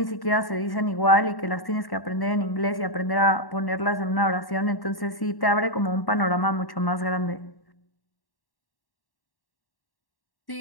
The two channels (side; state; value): right; late; 1.1 ms